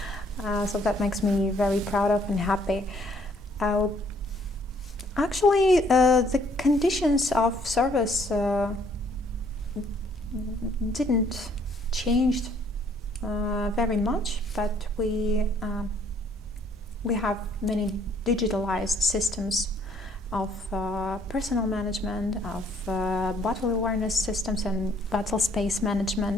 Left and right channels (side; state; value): both; normal; correlation 0.64